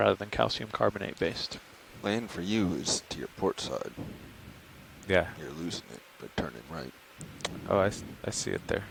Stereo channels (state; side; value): identical; both; correlation 1.00